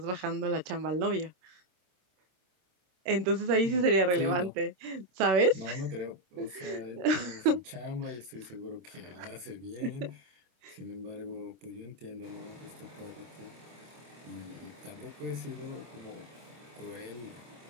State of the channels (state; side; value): late; left; 27 ms